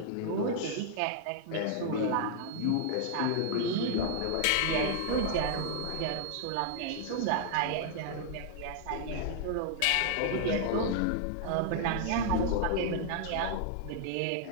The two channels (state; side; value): different; both; correlation -0.01